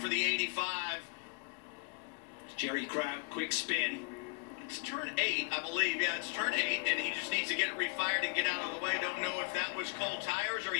the 85. Jerry Kraut, quick spin. It's turn 8, I believe. Yeah, it's turn 8, and he just needs to get it refired and get out of the way. Don't know if that was cold tires or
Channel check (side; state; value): right; quieter; 34.1 dB